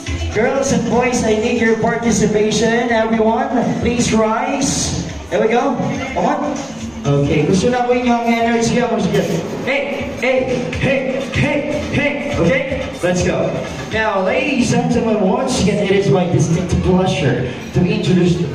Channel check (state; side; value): noise; left; rumble, 28 dB below the sound